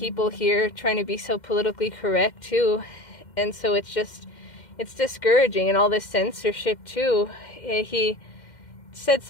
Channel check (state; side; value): late; right; 2.1 ms